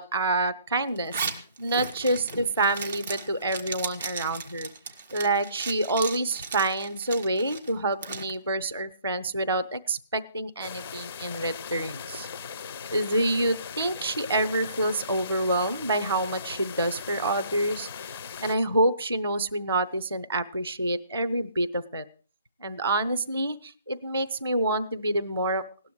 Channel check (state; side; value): inverted; both; correlation -0.61